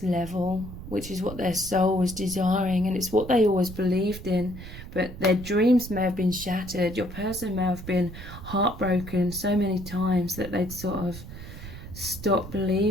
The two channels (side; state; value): right; noise; rumble, 12 dB below the sound